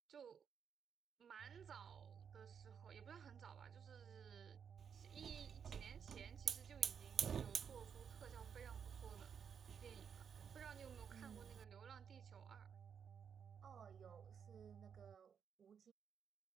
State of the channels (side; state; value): left; quieter; 7.3 dB